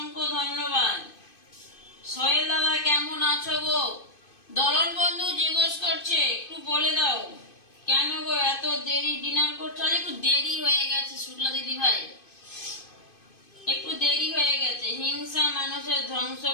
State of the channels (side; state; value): right; late; 2.5 ms